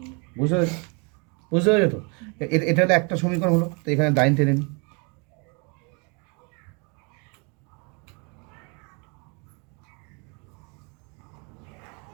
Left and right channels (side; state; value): left; quieter; 33.4 dB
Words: বুঝতে পেরেছো? বুঝতে পেরেছো তো? এটা হলো একটা সমীকরণ হলো। তো এখানে লাইন টেনে নিই।